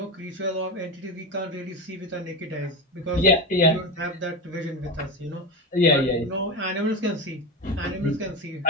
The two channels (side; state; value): both; normal; correlation 0.17